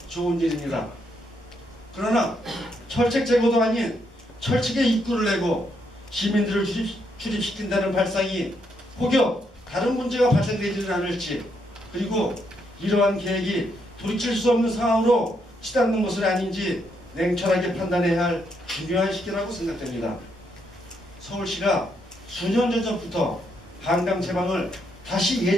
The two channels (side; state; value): both; normal; correlation 0.77